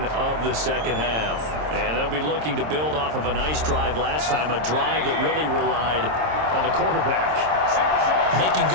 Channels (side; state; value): left; late; 26 ms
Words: of the second half. And they'll be looking to build off of a nice drive last time, a drive that really relied on the quarterback. Making